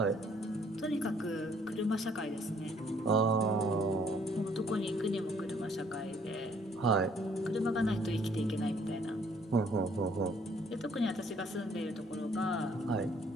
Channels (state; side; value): normal; both; correlation 0.63